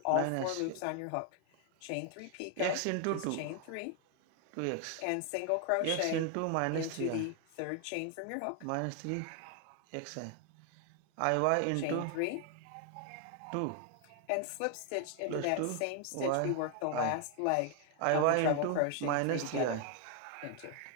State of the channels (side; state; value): both; different; correlation 0.00